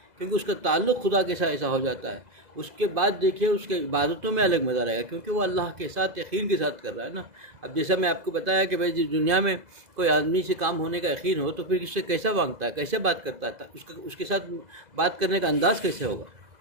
کیونکہ اس کا تعلق خدا کے ساتھ ایسا ہو جاتا ہے. اس کے بعد دیکھیے اس کے عبادتوں میں الگ مزہ رہے گا، کیونکہ وہ اللہ کے ساتھ یقین کے ساتھ کر رہا ہے نا. اب جیسا میں آپ کو بتایا کہ بھائی دنیا میں کوئی آدمی سے کام ہونے کا یقین ہو تو پھر اس سے کیسا مانگتا ہے، کیسے بات کرتا ہے، اس کے ساتھ بات کرنے کا انداز کیسے ہوگا.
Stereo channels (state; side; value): late; left; 2.0 ms